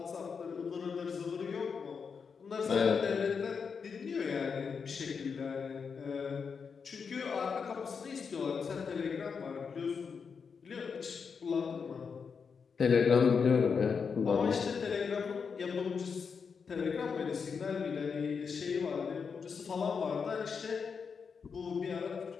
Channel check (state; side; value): quieter; right; 5.9 dB